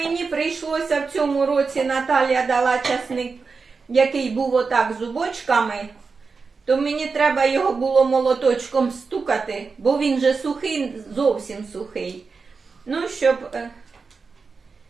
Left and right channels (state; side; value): quieter; left; 4.7 dB